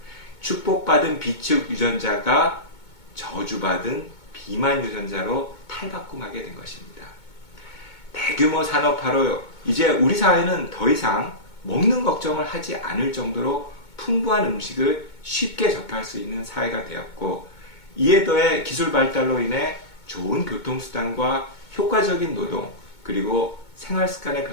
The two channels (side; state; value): right; late; 2.2 ms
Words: 축복받은 비축 유전자가 저주받은 비만 유전자로 탈바꿈하게 된 것입니다. 대규모 산업화로 이제 우리 사회는 더 이상 먹는 걱정을 하지 않을 정도로 풍부한 음식을 쉽게 접할 수 있는 사회가 되었고, 이에 더해 기술 발달로 인해 좋은 교통수단과 효과적인 노동, 그리고 생활 습관의